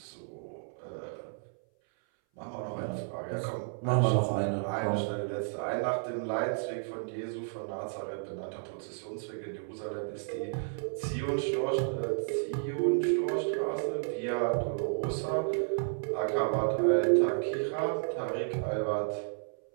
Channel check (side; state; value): left; silent; 56 dB below the other